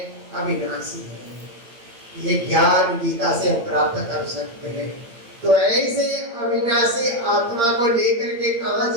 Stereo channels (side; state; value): left; late; 8.6 ms